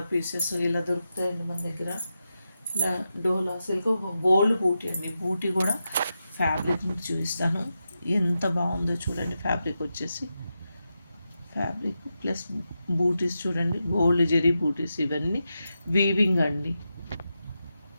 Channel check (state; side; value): inverted; both; correlation -0.89